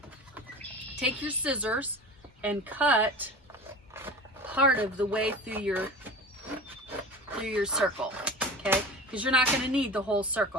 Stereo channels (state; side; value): normal; both; correlation 0.34